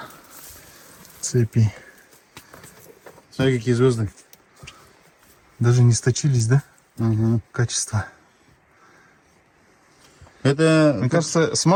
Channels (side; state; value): both; identical; correlation 1.00